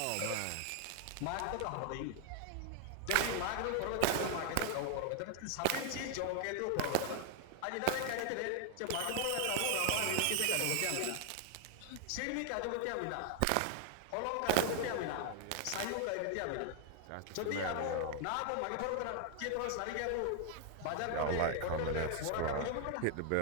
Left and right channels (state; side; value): different; both; correlation 0.00